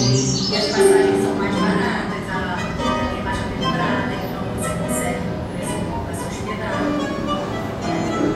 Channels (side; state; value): both; identical; correlation 1.00